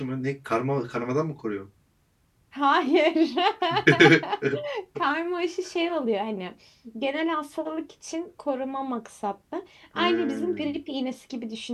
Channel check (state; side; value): identical; both; correlation 1.00